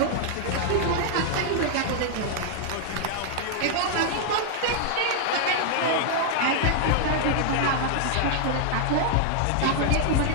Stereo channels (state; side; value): different; both; correlation -0.01